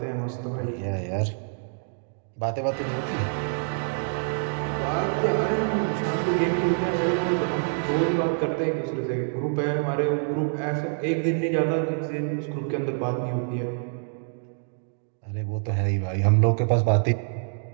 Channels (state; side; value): silent; left; digital silence